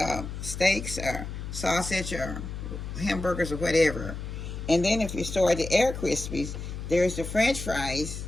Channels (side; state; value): left; noise; hum, 7 dB below the sound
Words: steaks or sausage or hamburgers or whatever. And then if you store the air crispies, there's the French fries.